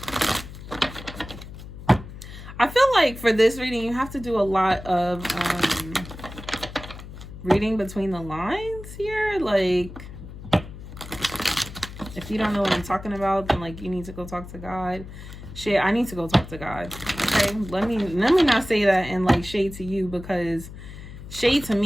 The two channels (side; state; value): left; noise; hum, 13 dB below the sound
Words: I feel like for this reading, you have to do a lot of reading between the lines here. Like, if you don't know what I'm talking about, then like you need to go talk to God. Shit, I need to go talk to God. Okay, let me not say that and like shade to you, because shade to